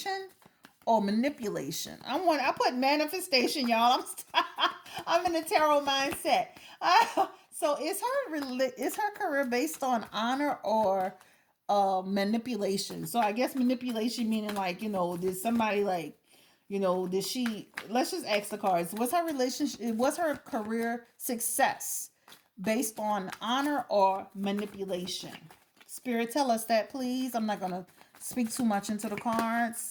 or manipulation? I put manifestation, y'all. I'm in a tarot mindset. So is her career based on honor or manipulation? So I guess manipulation meaning like, did somebody like, did she, let's just ask the cards, was her career success based on honor or manipulation? Spirit, tell us that, please. I'm not gonna speak too much into the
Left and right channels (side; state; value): both; identical; correlation 1.00